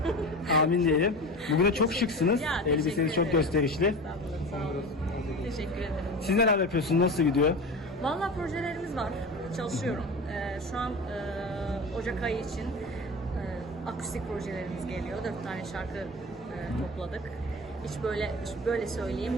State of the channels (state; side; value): normal; both; correlation 0.30